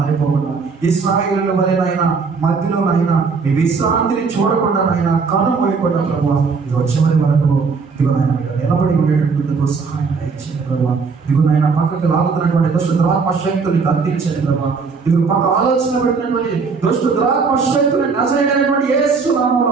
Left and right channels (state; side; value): quieter; left; 4.9 dB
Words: ఇశ్రాయేలుల వలె నాయన మధ్యలో నాయన మీ విశ్రాంతిని చూడకుండా నాయన కను పోయకుండా ప్రభావ ఇది చివరి వరకు ఇదిగో నాయన మీరు నిలబడి ఉండేటందుకు సహాయం దయచేయండి ప్రభావ. ఇదిగో నాయన పక్కకు లాగుతున్నటువంటి దుష్ట ద్రాత్మ శక్తుని గద్దించండి ప్రభావ. ఇదిగో పక్క ఆలోచన పెట్టినటువంటి దుష్ట ద్రాత్మ శక్తుని నజరేయుడైనటువంటి యేసు